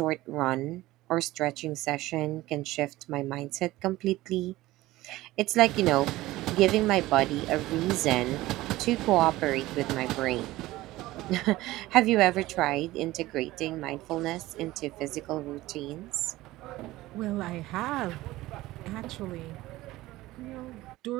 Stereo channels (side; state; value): left; quieter; 17.6 dB